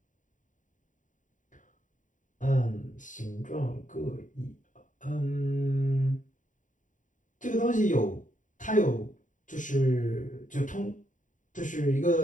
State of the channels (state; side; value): late; right; 0.37 ms